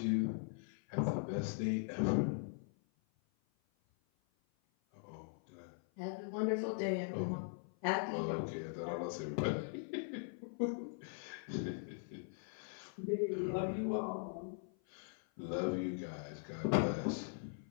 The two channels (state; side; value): silent; right; 51 dB below the other